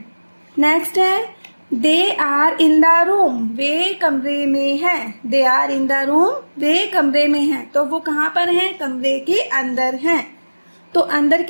नेक्स्ट है, they are in the room, वे कमरे में हैं। They are in the room, वे कमरे में हैं। तो वो कहाँ पर हैं, कमरे के अंदर हैं। तो अंदर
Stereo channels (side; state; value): both; inverted; correlation -1.00